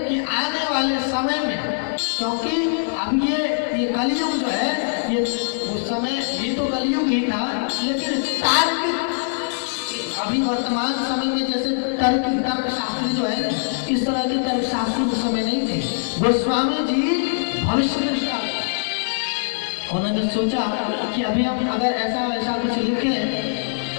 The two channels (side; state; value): right; silent; 64 dB below the other